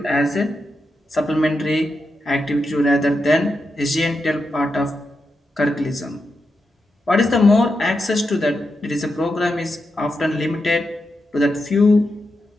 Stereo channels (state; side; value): normal; both; correlation 0.87